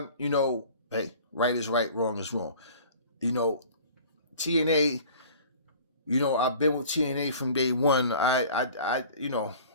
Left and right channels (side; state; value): both; inverted; correlation -0.46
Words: hey, right is right, wrong is wrong. TNA, I've been with TNA from day one. TNA,